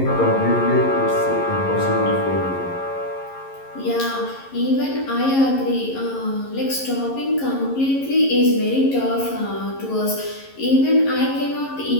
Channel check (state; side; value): late; right; 11 ms